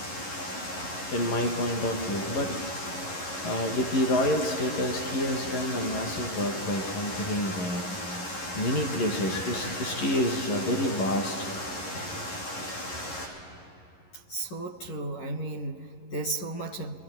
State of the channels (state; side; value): late; right; 11 ms